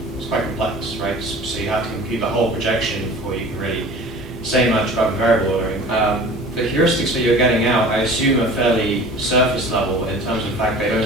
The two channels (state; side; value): normal; both; correlation 0.42